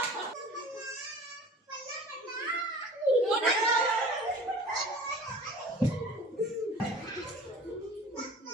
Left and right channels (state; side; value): normal; both; correlation 0.43